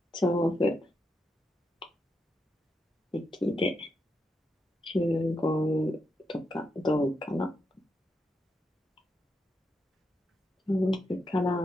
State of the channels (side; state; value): both; normal; correlation 0.83